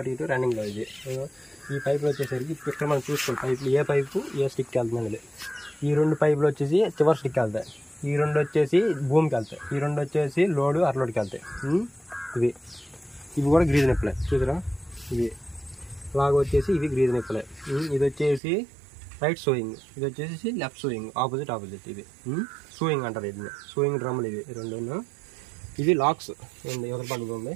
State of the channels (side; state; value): left; drops out; at 18.4 s